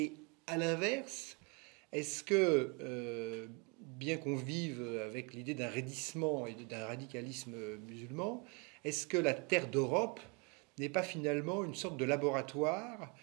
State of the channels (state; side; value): quieter; left; 31.5 dB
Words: à l'inverse, est-ce que, bien qu'on vive avec l'idée d'un raidissement et d'un radicalisme musulman, est-ce que la terre d'Europe n'est pas finalement une sorte de laboratoire